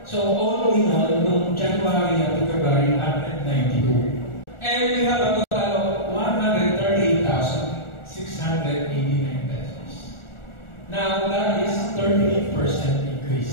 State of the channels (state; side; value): late; right; 1.4 ms